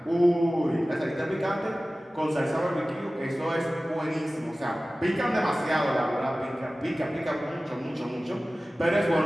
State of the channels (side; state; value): both; normal; correlation 0.97